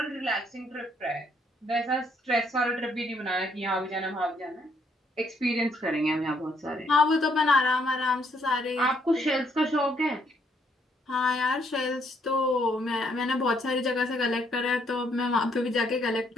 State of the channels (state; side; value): normal; both; correlation 0.71